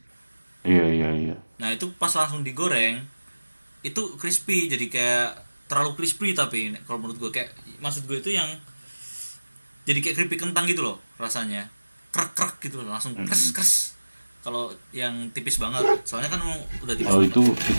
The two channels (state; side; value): inverted; both; correlation -1.00